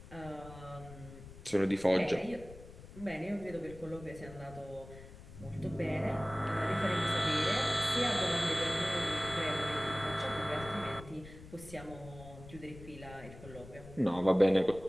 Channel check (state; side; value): noise; left; rumble, 16 dB below the sound